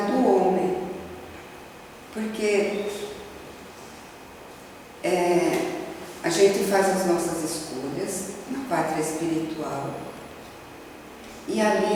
do homem. Porque a gente faz as nossas escolhas na pátria espiritual e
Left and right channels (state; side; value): identical; both; correlation 1.00